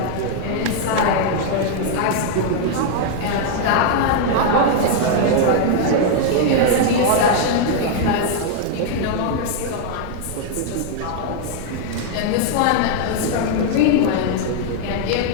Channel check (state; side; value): different; both; correlation 0.00